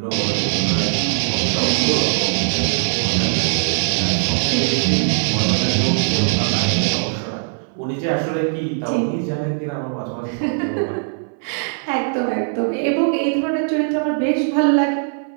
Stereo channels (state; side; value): silent; left; 64 dB below the other